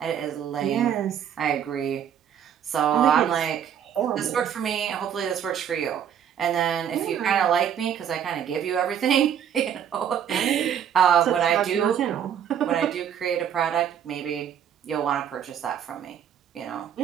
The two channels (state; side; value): quieter; left; 8.9 dB